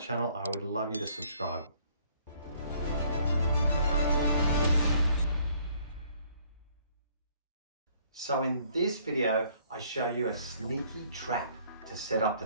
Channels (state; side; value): inverted; both; correlation -0.62